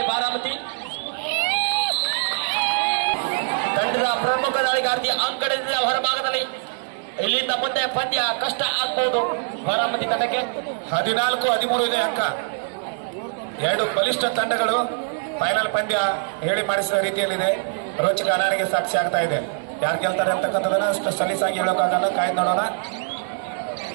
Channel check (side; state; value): left; silent; 56 dB below the other